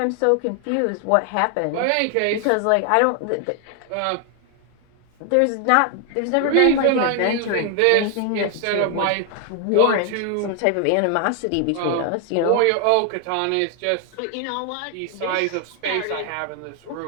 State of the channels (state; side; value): different; both; correlation 0.00